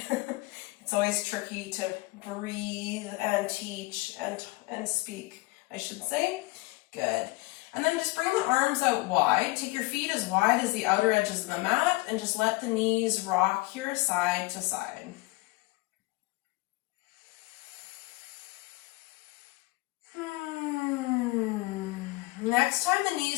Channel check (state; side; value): quieter; right; 22.0 dB